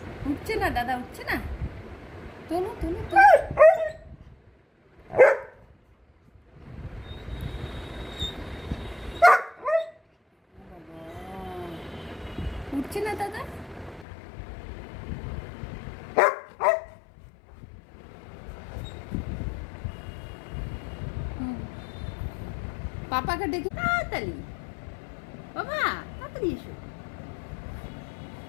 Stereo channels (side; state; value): right; drops out; at 14.1 s